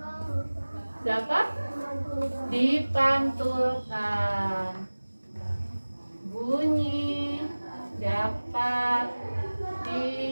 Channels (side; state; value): both; inverted; correlation -1.00